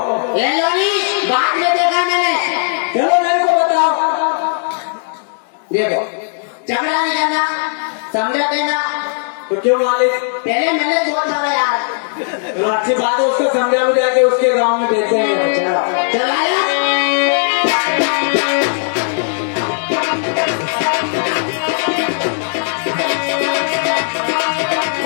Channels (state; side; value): silent; right; digital silence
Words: ये लोनी बाद में देखा मैंने चलो मेरे को बताओ। देखो झगड़ा नहीं करना समझा देना तो क्यों मालिक? पहले मैंने बहुत मारा यार तो अच्छी बात है, उसको समझा बुझा के उसके गांव में भेज देंगे। चलाया